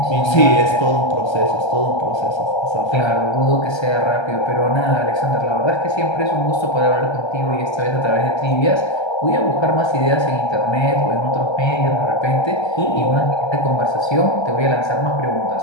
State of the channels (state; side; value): late; right; 1.3 ms